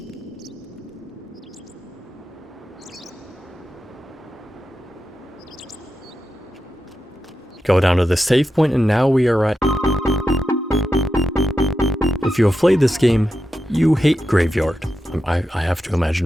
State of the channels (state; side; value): normal; both; correlation 0.89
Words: Go down to the save point, and now we are at... If you have played this game, you hate Graveyard. I have to